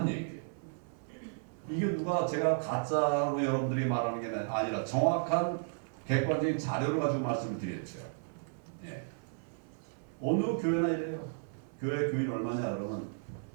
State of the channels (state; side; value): silent; left; 55 dB below the other